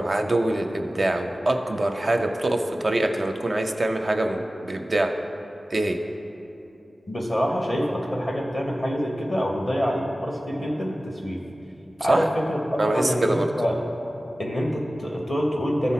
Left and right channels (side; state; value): both; normal; correlation 0.96